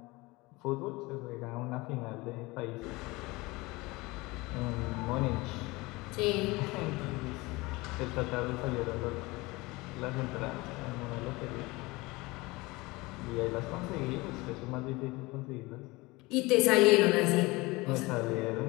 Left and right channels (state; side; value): quieter; right; 22.6 dB